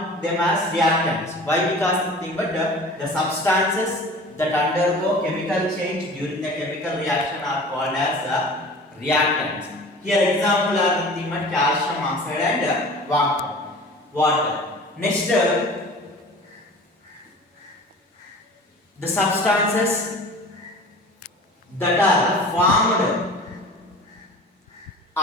them as reactants. Why? Because nothing but the substances that undergo chemical change during the chemical reaction are called as reactants. Here example are nothing but calcium oxide and water. Next, the substances that are formed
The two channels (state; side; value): normal; both; correlation 0.41